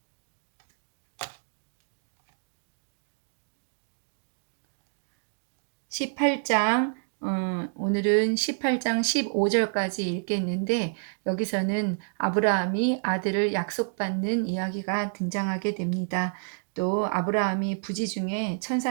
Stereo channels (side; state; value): left; silent; digital silence